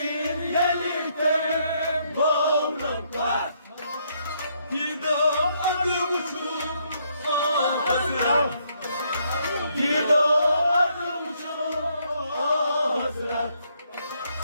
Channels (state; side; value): inverted; both; correlation -0.72